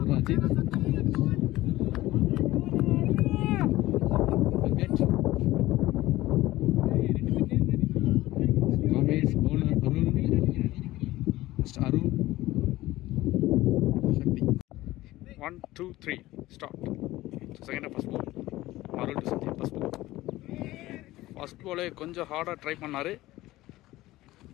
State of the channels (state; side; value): quieter; right; 17.1 dB